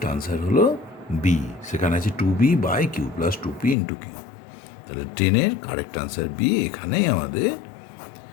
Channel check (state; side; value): drops out; right; at 3.8 s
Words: আনসার হলো বি, সেখানে আছে 2b by q plus 2p into q. তাহলে 10-এর কারেক্ট আনসার বি। এখানেই আমাদের